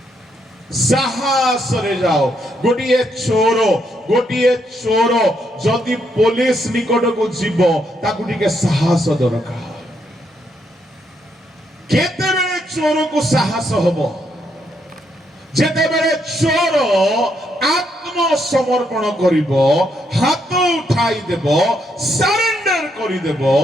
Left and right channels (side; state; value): both; normal; correlation 0.76